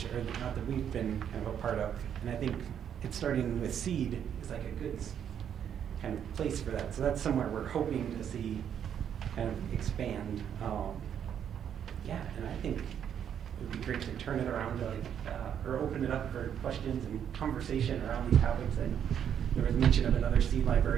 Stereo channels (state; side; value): quieter; left; 8.8 dB